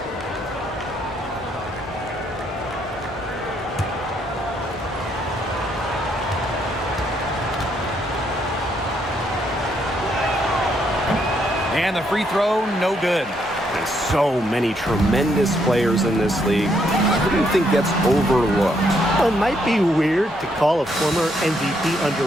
And the free throw, no good. There's so many tremendous players in this league. Who do you think gets overlooked? Well, it might be weird to call a former MVP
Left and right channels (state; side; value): normal; both; correlation 0.73